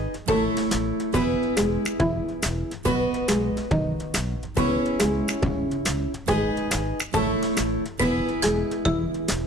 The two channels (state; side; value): normal; both; correlation 0.62